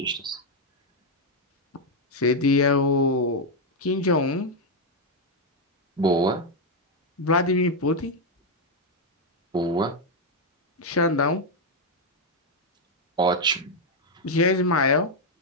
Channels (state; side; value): normal; both; correlation 0.02